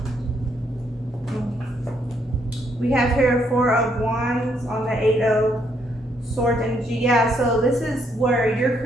We have here Four of Wands on the Eight of Swords energy. Yeah, so this is where you're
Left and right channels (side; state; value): both; normal; correlation 0.73